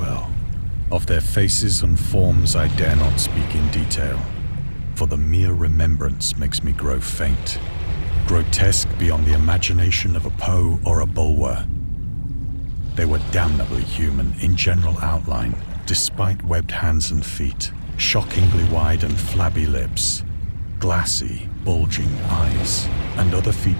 Of their faces and forms I dare not speak in detail, for the mere remembrance makes me grow faint, grotesque beyond the imagination of a Poe or a Bulwer. They were damnably human in general outline, despite webbed hands and feet, shockingly wide and flabby lips, glassy, bulging eyes, and other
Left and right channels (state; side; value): inverted; both; correlation -1.00